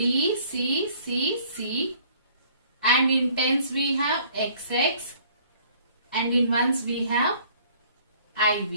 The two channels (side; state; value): both; inverted; correlation -0.56